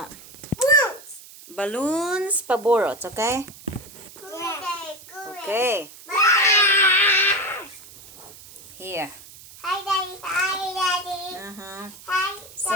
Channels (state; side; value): noise; right; hiss, 19 dB below the sound